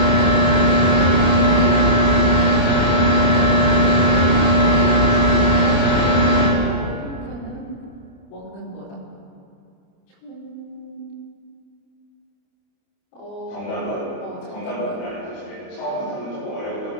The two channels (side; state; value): right; late; 28 ms